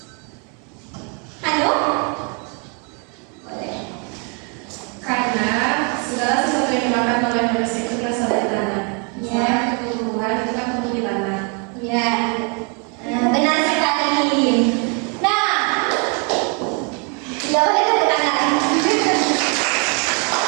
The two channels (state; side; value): quieter; left; 35.9 dB